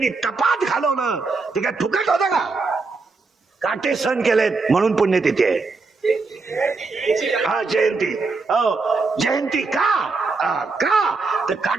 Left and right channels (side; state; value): left; quieter; 4.0 dB